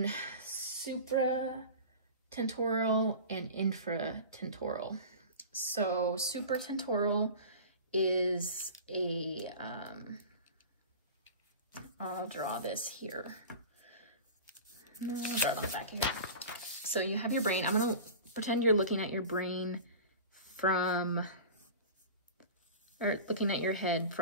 supratentorial and infratentorial. So supratentorial is I'll draw this here. No, I'll draw it on the back of here. So you have your brain. I'm gonna pretend you're looking at your brain looking at your head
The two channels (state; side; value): inverted; both; correlation -0.35